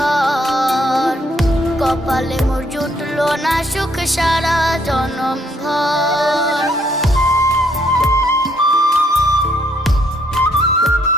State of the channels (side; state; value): both; normal; correlation 0.69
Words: কপালে মোর জুটলো না সুখ সারা জনম ভর।